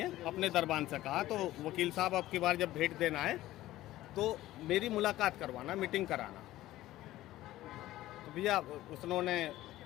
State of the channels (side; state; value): right; quieter; 15.5 dB